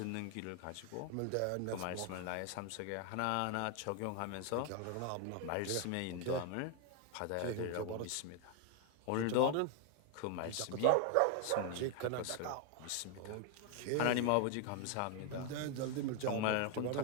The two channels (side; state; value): both; different; correlation 0.01